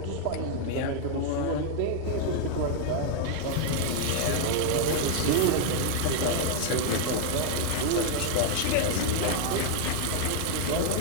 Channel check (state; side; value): different; both; correlation 0.00